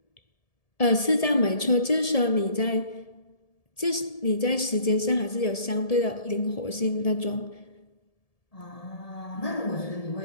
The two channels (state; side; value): late; right; 1.7 ms